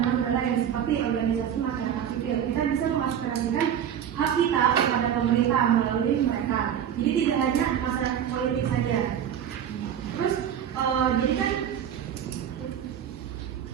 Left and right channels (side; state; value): left; quieter; 9.3 dB